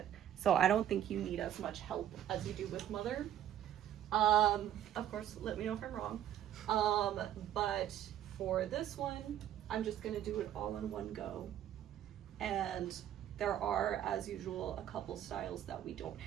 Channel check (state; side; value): quieter; left; 11.1 dB